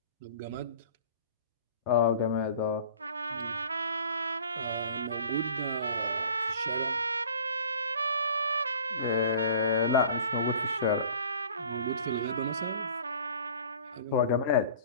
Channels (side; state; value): both; inverted; correlation -0.46